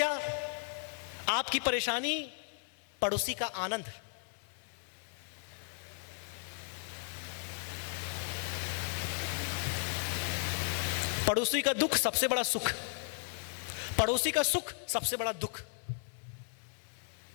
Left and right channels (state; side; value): silent; right; 54 dB below the other